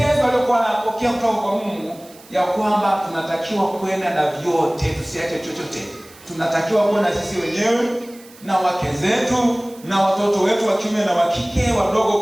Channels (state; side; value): noise; right; hiss, 23 dB below the sound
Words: aliyokuwa anapokea kutoka kwa Mungu ya kwamba tunatakiwa kwenda na vyote, tusiache chochote. Tunatakiwa kwenda sisi wenyewe na wake zetu na watoto wetu wa kiume na wa kike, wadogo